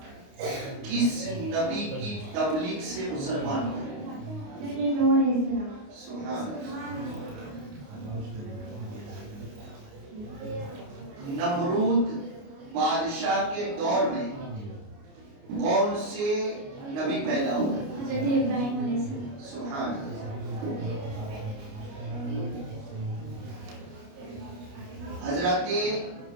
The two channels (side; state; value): left; late; 29 ms